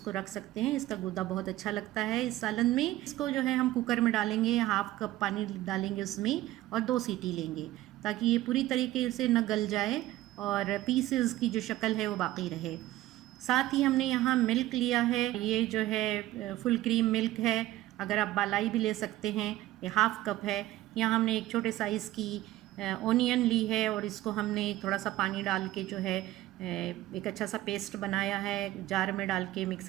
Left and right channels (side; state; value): left; quieter; 15.8 dB